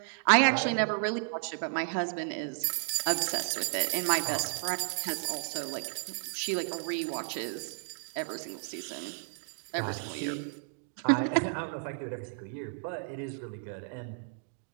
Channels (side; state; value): left; silent; digital silence